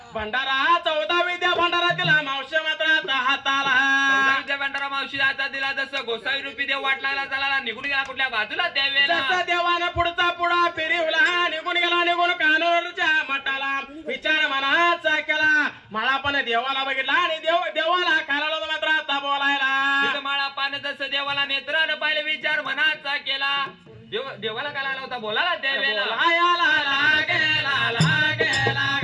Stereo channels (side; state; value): both; identical; correlation 1.00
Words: भंडारा 14 विद्या भंडारा दिला मावशी मात्र आता हाताला भंडारा मावशी आता दिला जसं गोसाई रूपी देव वाट लागला चालाला निघून गेला कुठल्या बाजूला त्यावेळेला जसं देवानं पुढचा पुढा फिरवला निघून गेला निघून कानूरच्या मठाला विचार मनाचा केला माळा पण देवाला बघितला आणि देवाला खायला मात्र आता बोलायला माळा पान जसं देवाला नेत्रानं पाहिलं विचार मनाचा केला देवाला काय लागला होता बोलायला त्यावेळेला लागेला लागेला